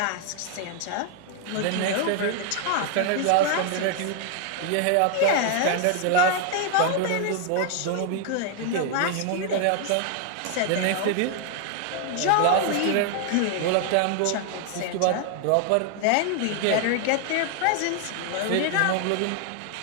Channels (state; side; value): different; both; correlation 0.00